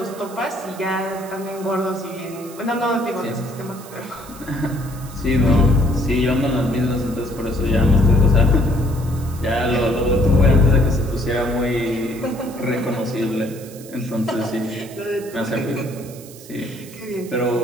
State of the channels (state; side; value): noise; right; hiss, 19 dB below the sound